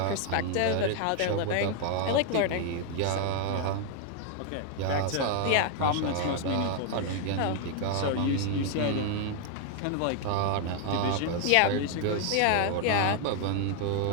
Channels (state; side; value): different; both; correlation 0.00